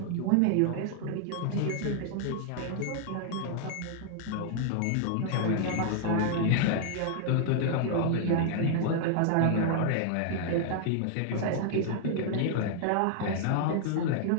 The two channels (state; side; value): different; both; correlation 0.00